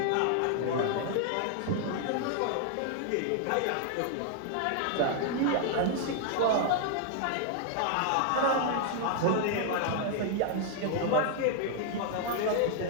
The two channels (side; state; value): both; different; correlation -0.01